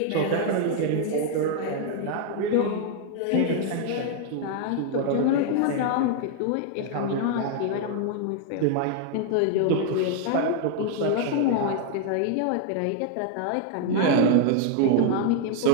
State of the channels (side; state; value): both; different; correlation 0.00